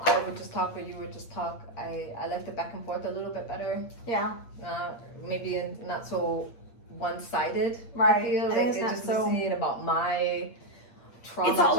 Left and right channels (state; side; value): late; right; 8.6 ms